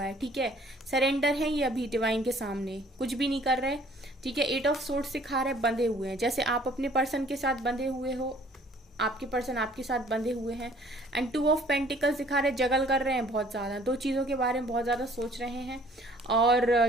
है, ठीक है। सरेंडर है ये अभी डिवाइन के सामने, कुछ भी नहीं कर रहे, ठीक है। 8 ऑफ सोर्ड्स सिखा रहे बंधे हुए हैं, जैसे आप अपने पर्सन के साथ बंधे हुए हो, आपके पर्सन आपके साथ बंधे हुए हैं। एंड 2 ऑफ पेंटिकल्स दिखा रहे जगल कर रहे हैं बहुत ज्यादा, दो चीजों के बारे में बहुत ज्यादा सोच रहे हैं। और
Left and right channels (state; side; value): normal; both; correlation 0.56